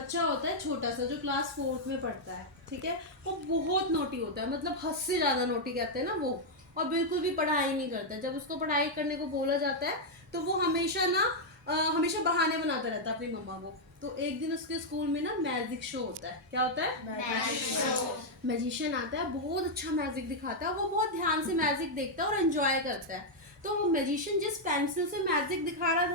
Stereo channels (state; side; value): normal; both; correlation -0.02